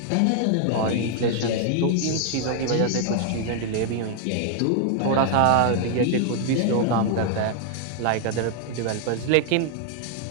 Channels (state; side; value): different; both; correlation 0.00